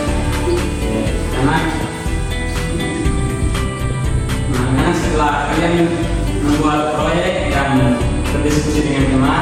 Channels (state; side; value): identical; both; correlation 1.00